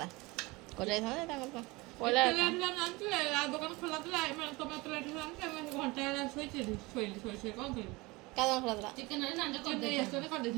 करि जाईथांदा तांकर पहिला ଦୋକାନ ଖୋଲା ଥିଲା ଟମାଟୋ ଲାଠି ଘଣ୍ଟା ଶୋଇଥିଲି ଶୋଇ କ'ଣ କରିବି କାଦନ ଖରାଥିଲା ଚିକେନ ରେ ନାଞ୍ଜ ଚିକେନ ନେଇ ଆସିଛନ୍ତି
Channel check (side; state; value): left; quieter; 23.4 dB